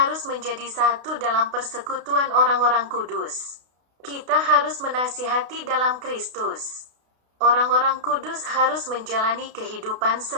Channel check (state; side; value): late; left; 32 ms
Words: menjadi satu dalam persekutuan orang-orang kudus. Kita harus menasihati dalam Kristus. Orang-orang kudus harus menjalani kehidupan